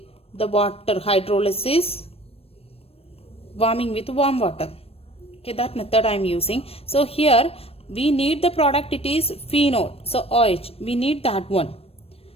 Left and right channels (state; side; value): late; right; 0.28 ms